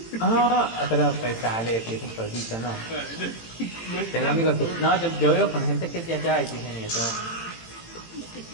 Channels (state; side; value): late; right; 18 ms